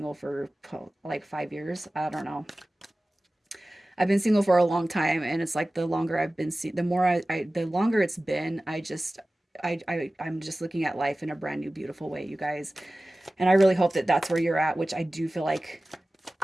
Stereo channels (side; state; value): both; normal; correlation 0.97